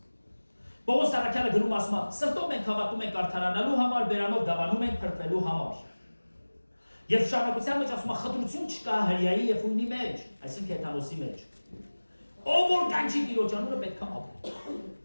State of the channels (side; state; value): both; inverted; correlation -1.00